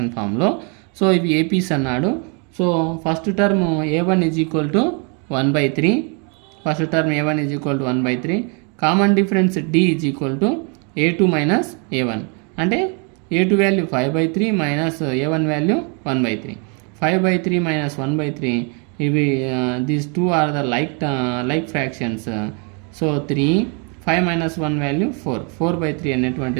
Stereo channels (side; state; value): left; quieter; 36.3 dB